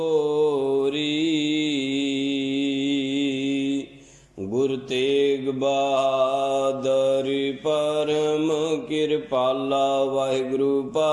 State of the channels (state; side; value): identical; both; correlation 1.00